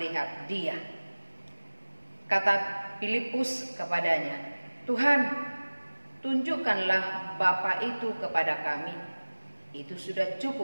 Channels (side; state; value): both; inverted; correlation -1.00